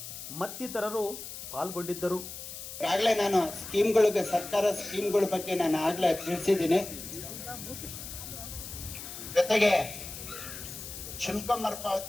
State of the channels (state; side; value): noise; left; hiss, 10 dB below the sound